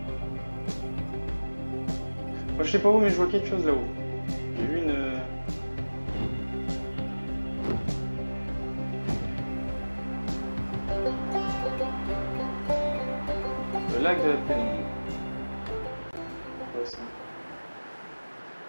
Moi, je sais pas où, mais je vois quelque chose là-haut. J'ai vu une. Le lac de la pénombre. Ouais, ça.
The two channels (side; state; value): both; inverted; correlation -1.00